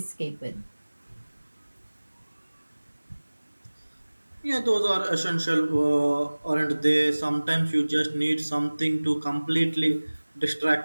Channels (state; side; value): inverted; both; correlation -1.00